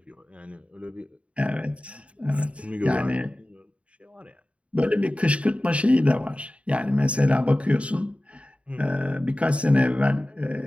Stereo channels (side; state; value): left; late; 0.063 ms